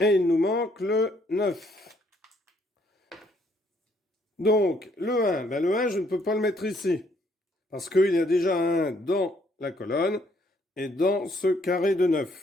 il nous manque le 9. Donc, le 1, le 1, je ne peux pas le mettre ici. Parce qu'il y a déjà un 1 dans la colonne et dans ce carré de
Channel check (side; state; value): both; normal; correlation 0.68